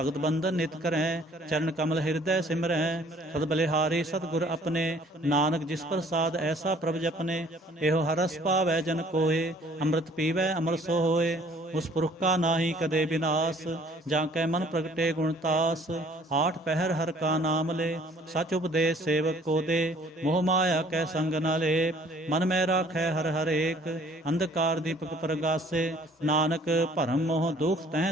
ਬੰਧਨ ਨਿਤ ਕਰੈ, ਚਰਨ ਕਮਲ ਹਿਰਦੈ ਸਿਮਰੈ। ਸਦ ਬਲਿਹਾਰੀ ਸਤਿਗੁਰ ਆਪਣੇ, ਨਾਨਕ ਜਿਸ ਪ੍ਰਸਾਦ ਐਸਾ ਪ੍ਰਭ ਜਪਨੇ। ਇਹੋ ਹਰਸ ਪਾਵੈ ਜਨ ਕੋਏ, ਅੰਮ੍ਰਿਤ ਪੀਵੈ ਅਮਰ ਸੋ ਹੋਏ। ਉਸ ਪੁਰਖ ਕਾ ਨਾਹੀ ਕਦੇ ਬਿਨਾਸ, ਜਾਂ ਕੈ ਮਨ ਪ੍ਰਗਟੇ ਗੁਣਤਾਸ। ਆਠ ਪਹਿਰ ਹਰ ਕਾ ਨਾਮ ਲੈ, ਸਚ ਉਪਦੇਸ਼ ਸੇਵਕ ਕੋ ਦੇ। ਮੋਹ ਮਾਇਆ ਕੈ ਸੰਗ ਨ ਲੇਪ, ਮਨ ਮੈਂ ਰਾਖੈ ਹਰ ਹਰੇਕ। ਅੰਧਕਾਰ ਦੀਪਕ ਪ੍ਰਗਾਸੇ, ਨਾਨਕ ਭਰਮ ਮੋਹ ਦੁਖ ਤਹਿ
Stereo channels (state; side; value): normal; both; correlation 0.57